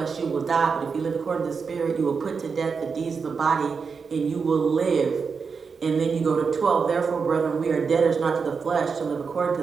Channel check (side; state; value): left; quieter; 5.4 dB